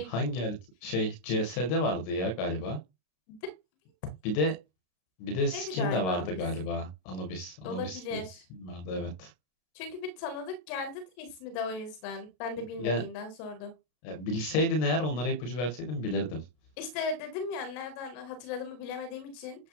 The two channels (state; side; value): late; right; 33 ms